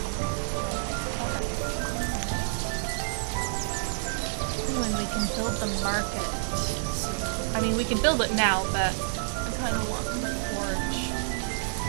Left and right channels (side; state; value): left; silent; digital silence